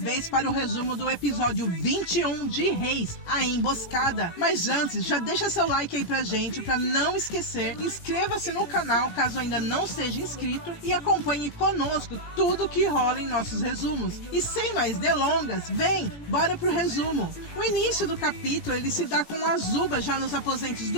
para o resumo do episódio 21 de Reis, a Emboscada. Mas antes, já deixa seu like aí pra gente, pra não esquecer. Inscreva-se no canal caso ainda não seja inscrito e acompanhe conosco tudo que rola em nossos resumos. E sem mais delongas, vem, bora pro resumo. O início do capítulo, ele se dá com Azula já nos aposentos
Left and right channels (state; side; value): late; right; 17 ms